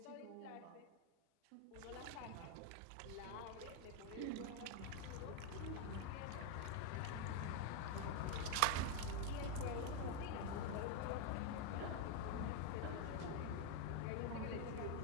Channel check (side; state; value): both; different; correlation 0.01